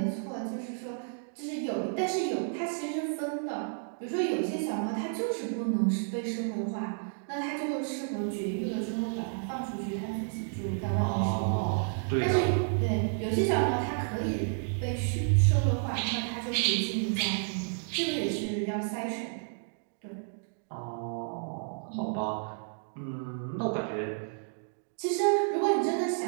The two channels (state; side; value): silent; left; digital silence